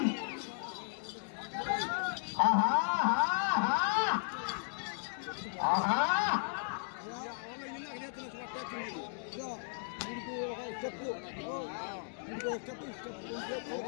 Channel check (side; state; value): right; silent; digital silence